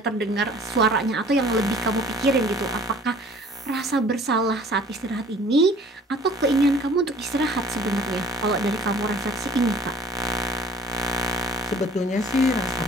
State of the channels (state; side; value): normal; both; correlation 0.51